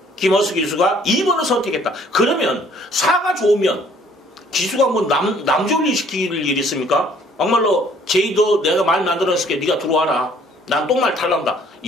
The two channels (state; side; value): normal; both; correlation 0.59